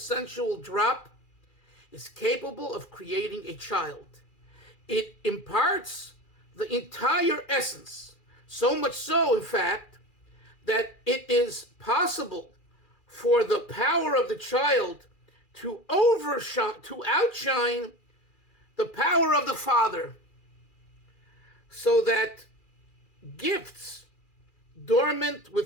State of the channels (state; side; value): late; right; 2.4 ms